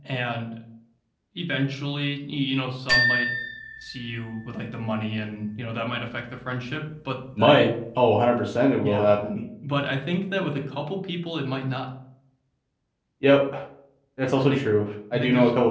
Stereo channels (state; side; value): identical; both; correlation 1.00